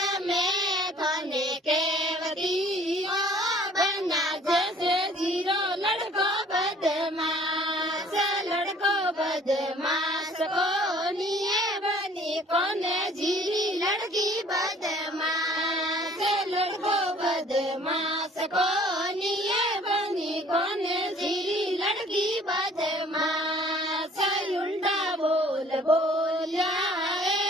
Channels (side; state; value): both; normal; correlation 0.54